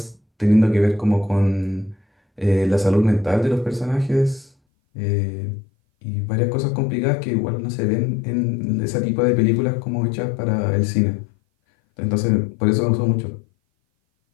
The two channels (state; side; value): drops out; right; at 4.5 s